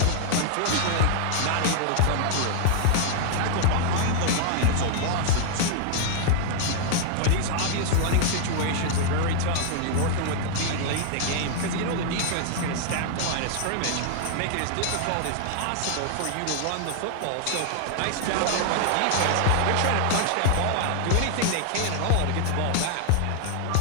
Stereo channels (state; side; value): different; both; correlation 0.00